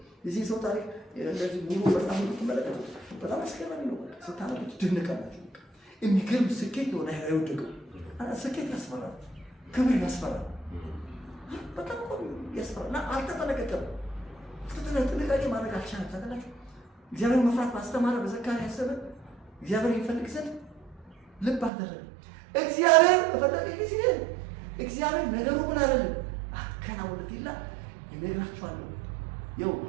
የዚህ ሰው ታሪክ እንደዚህ ሙሉ በጣም ትመለከቱ በጣም አስገራሚ ነው። ስታነቡት ትደነቃላችሁ። የሚገርም ስኬት ነው ላይ አይወደቀው። ስኬት ያስፈራል፣ ክብር ያስፈራል፣ በጣም ያስፈራል። እና አልተጠነቀቀም። ጥንቃቄ ማድረግ አልቻለም። ታውቃላችሁ እግዚአብሔር መፍራት ባስተማረ በዘካርያስ ዘመን እግዚአብሔር ይፈልግ ዘንድ ልብ አደረገ። እግዚአብሔር በፈለገ ጊዜ እግዚአብሔር ነገሩ ምን አይደለም አከናውነት ይላል። ይነግራችኋለሁ። ይኸው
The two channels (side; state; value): left; drops out; at 21.7 s